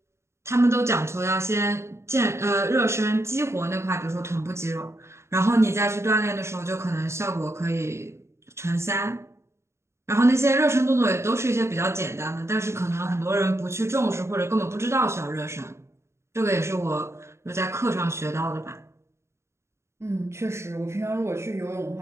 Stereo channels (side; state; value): left; late; 0.13 ms